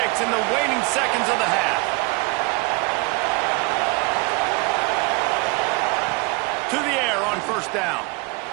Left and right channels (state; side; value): quieter; left; 27.6 dB